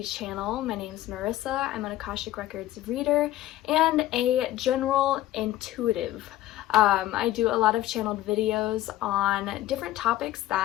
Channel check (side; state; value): right; quieter; 14.7 dB